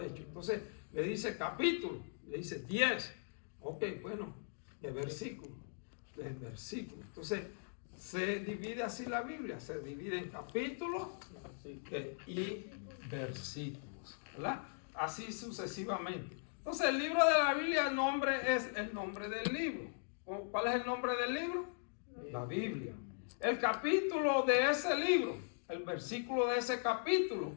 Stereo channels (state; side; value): silent; right; digital silence